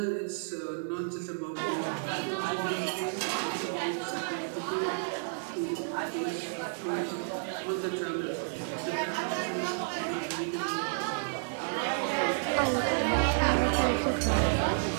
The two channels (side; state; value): left; silent; 57 dB below the other